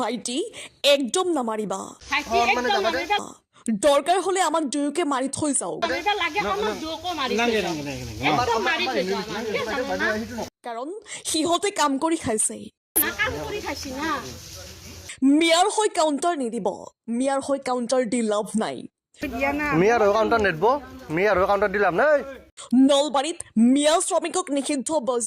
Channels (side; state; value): both; identical; correlation 1.00